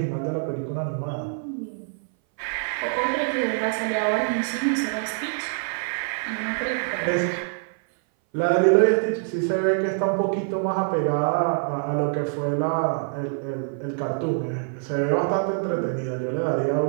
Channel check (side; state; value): left; silent; 59 dB below the other